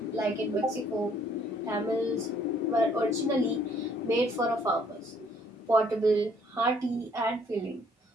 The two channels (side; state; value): both; normal; correlation 0.63